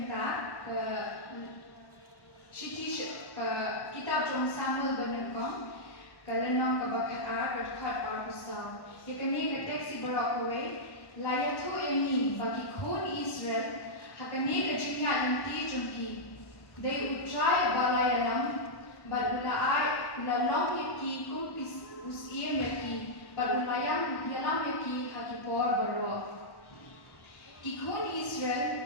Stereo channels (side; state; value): right; late; 1.1 ms